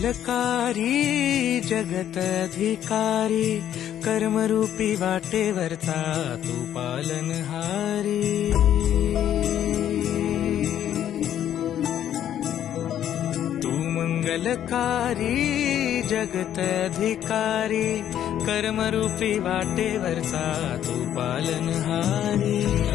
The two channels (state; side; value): quieter; right; 10.7 dB